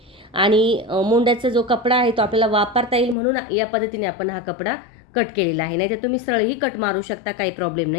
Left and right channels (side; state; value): right; drops out; at 3.2 s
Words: आणि मोंड्याचा जो कपडा आहे तो आपल्याला वापरता येईल म्हणून या पद्धतीने आपण हा कपडा कट केलेला आहे. नाही तर तुम्ही सरळही कट मारू शकता, काही प्रॉब्लेम